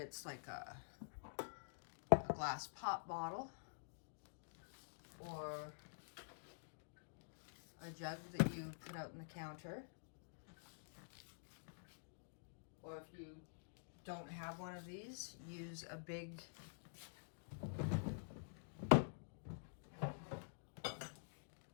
like a glass pop bottle or a jug that you put out on the counter, or if you don't have one of these, use a big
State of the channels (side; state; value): right; silent; digital silence